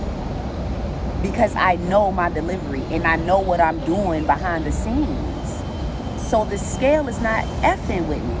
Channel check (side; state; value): both; identical; correlation 1.00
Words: Because I know my delivery and I know what I'm doing behind the scenes. So the scale is not effing with me.